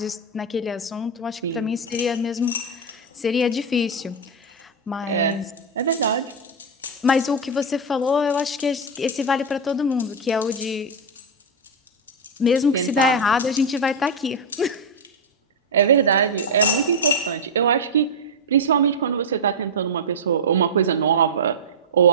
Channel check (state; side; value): normal; both; correlation 0.01